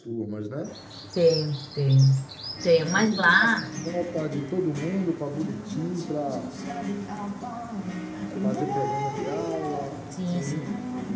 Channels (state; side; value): identical; both; correlation 1.00